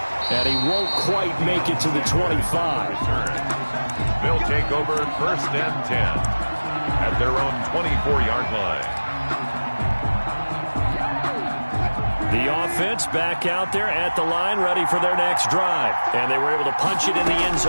And he won't quite make it to the 25. They'll take over first and 10 at their own 24-yard line. The offense back out there at the line, ready for their next drive. And they were able to punch it in the end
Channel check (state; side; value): inverted; both; correlation -1.00